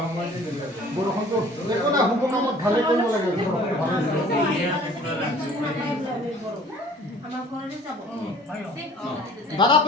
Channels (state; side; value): normal; both; correlation 0.51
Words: সময়ত বৰষুণটো একো নাই শুভ কামত ভালে কৰিব লাগে বৰষুণটো ভালে দাদা